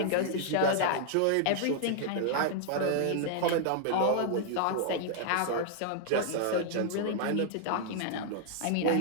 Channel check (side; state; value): both; different; correlation -0.01